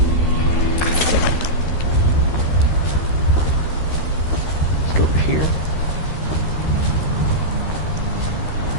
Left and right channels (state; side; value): late; right; 13 ms